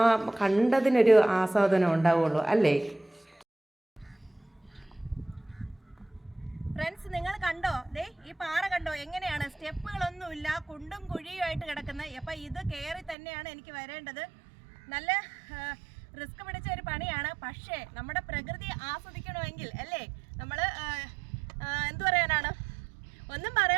കണ്ടതിനൊരു ആസ്വാദനം ഉണ്ടാവുള്ളൂ അല്ലേ. ഫ്രണ്ട്സ്, നിങ്ങൾ കണ്ടോ? ദേ ഈ പാറ കണ്ടോ എങ്ങനെയാണ്? സ്റ്റെപ്പുകളൊന്നുമില്ല, കുണ്ടും കുഴിയുമായിട്ട് കിടക്കുന്നത്. അപ്പം ഇത് കയറി തന്നെയാണ് എനിക്ക് വരേണ്ടത്. നല്ല റിസ്ക് പിടിച്ച ഒരു പണിയാണ്. പക്ഷേ നമ്മുടെ പ്രകൃതി ആസ്വദിക്കണമെങ്കിൽ അല്ലേ, നമ്മൾ എന്തു പറയാനാണ്, ഒന്നും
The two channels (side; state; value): left; drops out; at 13.2 s